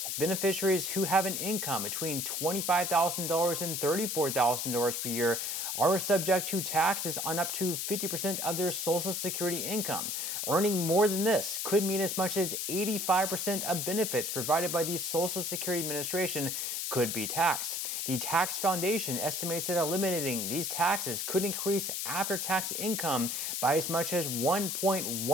beneficiaries who have an income between $25,000 and $34,000 per year are subject to taxes on up to 50% of their Social Security income. Earning more than this could mean as much as 85% of benefits provided by the Social Security Administration could be taxed. The Tax Foundation estimates that eliminating these taxes could increase after-tax income by as much as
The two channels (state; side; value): noise; left; hiss, 2 dB below the sound